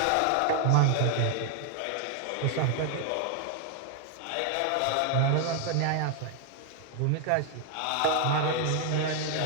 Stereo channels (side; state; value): both; different; correlation 0.00